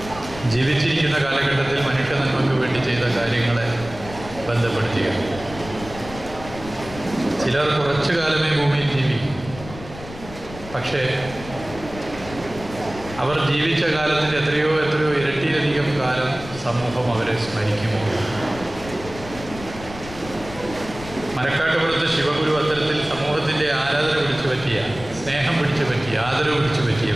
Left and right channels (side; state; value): left; noise; rumble, 14 dB below the sound